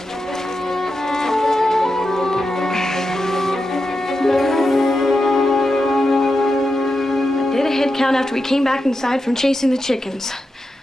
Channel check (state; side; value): normal; both; correlation 0.88